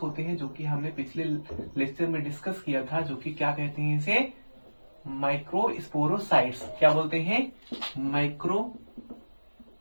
होते हैं, जो कि हमने पिछले लेक्चर में डिस्कस किया था, जो कि क्या कहते हैं इसे, माइक्रोस्पोरोसाइट्स। क्या बोलते हैं,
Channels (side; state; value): both; inverted; correlation -1.00